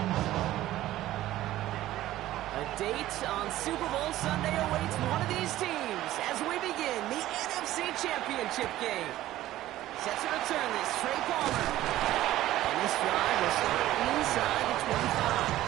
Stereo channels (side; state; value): left; quieter; 14.8 dB